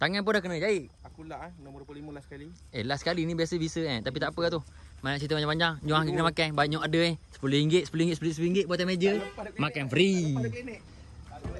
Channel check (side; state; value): both; identical; correlation 1.00